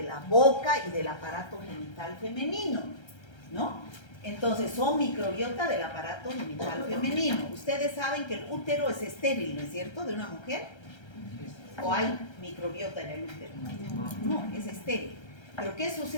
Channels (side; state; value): right; late; 1.3 ms